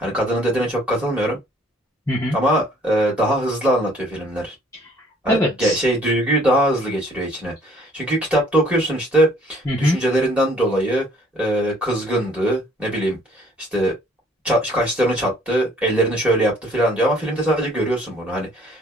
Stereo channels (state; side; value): normal; both; correlation 0.59